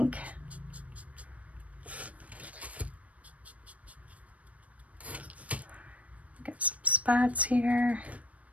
Got some spots here.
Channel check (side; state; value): left; late; 0.067 ms